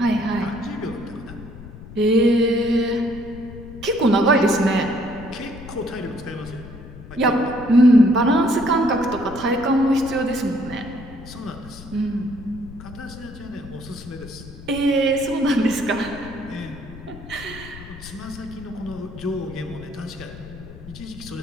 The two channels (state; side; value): noise; left; rumble, 15 dB below the sound